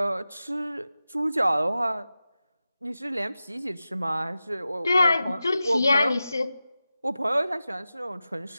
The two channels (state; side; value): inverted; both; correlation -0.93